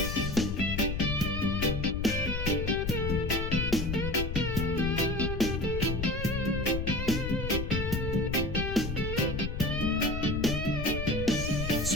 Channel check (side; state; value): left; noise; rumble, 3 dB below the sound